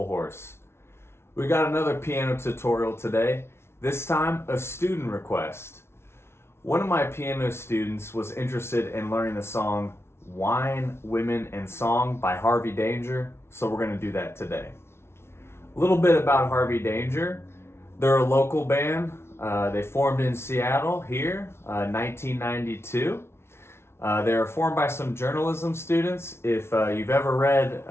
Horse. We got another piano tutorial today, this time a student request. One of my piano students was interested in learning the song Wine, Women, and Song by Harvey Danger, so we're going to do that today. A little bit about Harvey Danger. They're a local band. They formed in Seattle here, 1992. They were formed by some journalism students. If you've ever read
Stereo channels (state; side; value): late; right; 0.12 ms